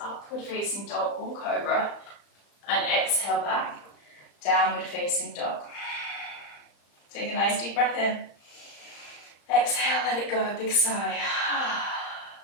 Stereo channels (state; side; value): late; right; 35 ms